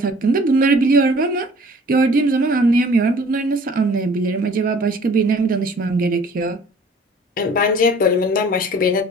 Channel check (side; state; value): both; normal; correlation 0.51